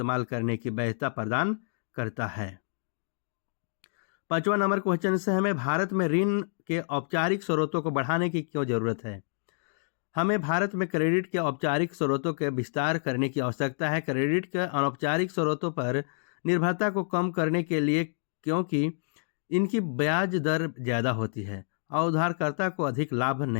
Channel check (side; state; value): right; silent; digital silence